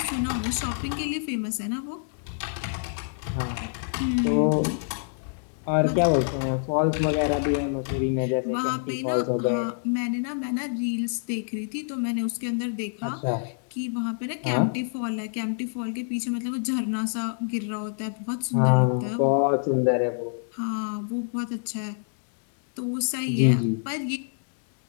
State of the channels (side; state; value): right; silent; digital silence